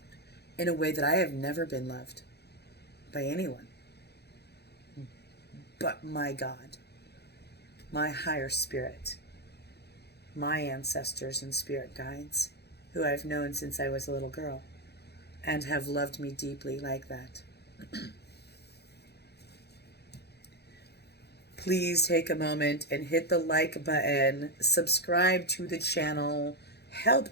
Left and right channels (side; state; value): right; late; 0.48 ms